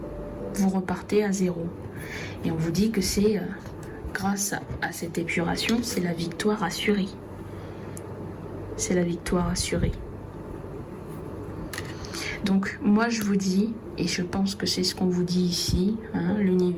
Vous repartez à zéro. Et on vous dit que c'est grâce à cette épuration, c'est la victoire assurée. C'est la victoire assurée. Donc moi je vous dis, et je pense que c'est ce qu'on vous dit ici,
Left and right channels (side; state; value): both; identical; correlation 1.00